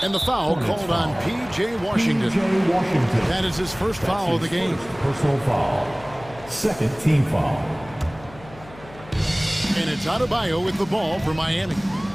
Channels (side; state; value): left; noise; hum, 20 dB below the sound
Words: And the foul called on P.J. Washington. That is his first foul of the game. Personal foul. Second team foul. And it's Adebayo with the ball for Miami.